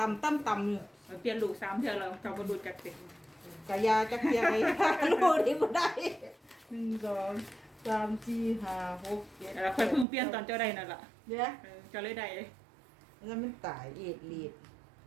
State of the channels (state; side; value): drops out; left; at 10.1 s